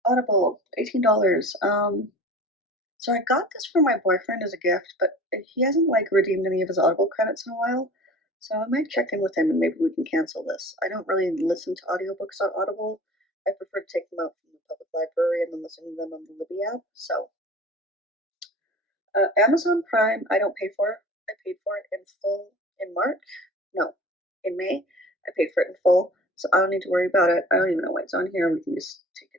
Audible, $18. So I got this for my boyfriend as a gift, but he hasn't like redeemed any of his Audible credits in a while. So I might check in with him and maybe we can cancel this. I don't really listen to audiobooks on Audible. I prefer to take them out from the public library and then listen to them on the Libby app. So Amazon Prime, I don't pay for. I paid for it in full in March. No, in May. I paid for it in full, so I don't need to worry about it. I don't even know why it's on here. We can just take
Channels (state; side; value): normal; both; correlation 0.40